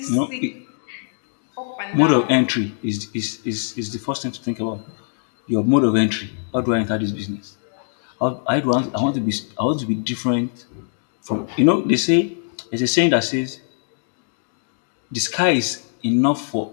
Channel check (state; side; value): silent; right; 64 dB below the other